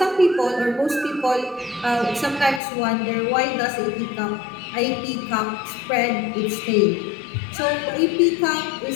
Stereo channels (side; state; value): right; drops out; at 2.6 s